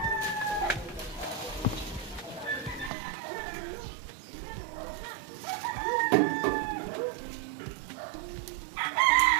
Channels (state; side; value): drops out; left; at 2.9 s